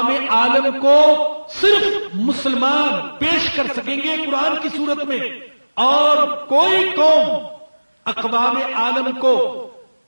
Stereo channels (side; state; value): both; inverted; correlation -1.00